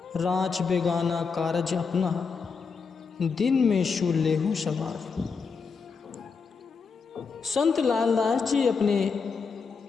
राज बेगाना कारज अपना दिन में शू लेहू सवार। संत लालदास जी अपने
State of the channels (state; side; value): quieter; right; 5.3 dB